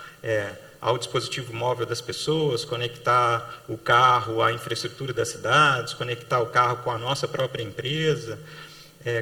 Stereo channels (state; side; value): identical; both; correlation 1.00